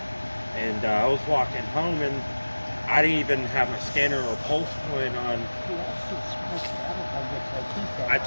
and I was walking home, and I didn't even have my scanner or pulse point on. I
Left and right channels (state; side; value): inverted; both; correlation -1.00